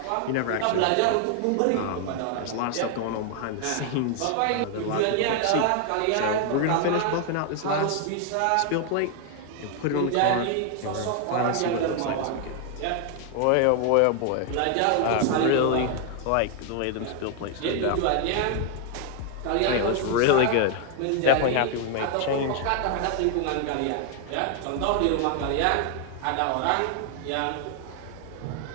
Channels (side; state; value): both; different; correlation 0.00